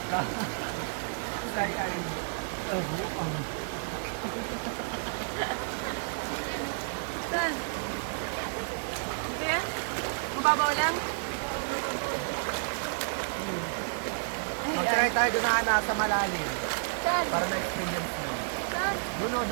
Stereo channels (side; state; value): left; silent; digital silence